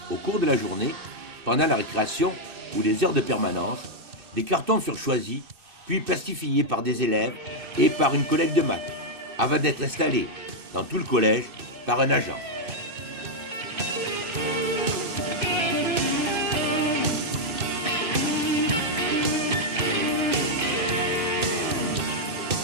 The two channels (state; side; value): late; left; 2.6 ms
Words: au cours de la journée, pendant la récréation ou les heures de permanence, des cartons furent choisis, puis plastifiés par des élèves et par une collègue de maths, avant d'être installés dans tout le collège par un agent.